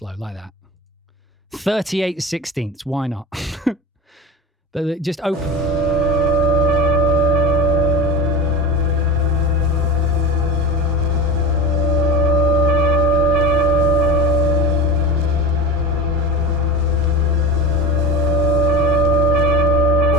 like that. 38/16, why not? But just open.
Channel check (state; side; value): normal; both; correlation 0.27